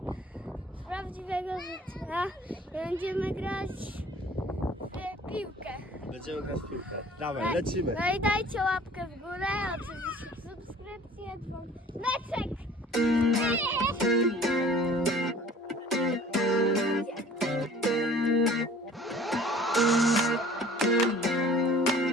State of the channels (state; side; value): normal; both; correlation 0.49